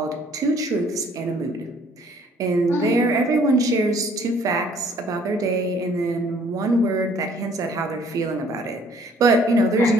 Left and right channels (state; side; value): normal; both; correlation 0.59